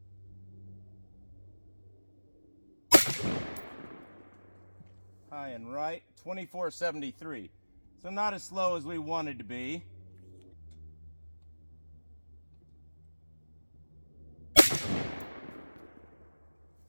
High and right, 24.73. So not as slow as we wanted to be.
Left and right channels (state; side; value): inverted; both; correlation -1.00